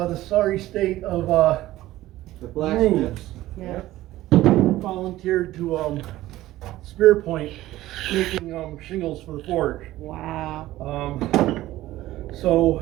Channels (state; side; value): quieter; left; 15.8 dB